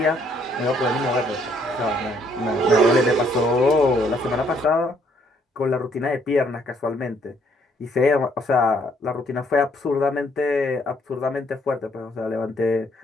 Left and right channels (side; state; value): both; normal; correlation 0.67